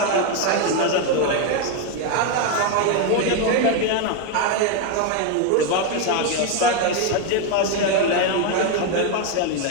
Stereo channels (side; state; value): both; different; correlation 0.01